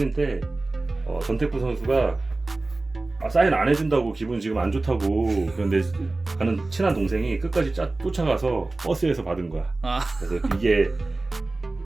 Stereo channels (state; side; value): quieter; left; 3.1 dB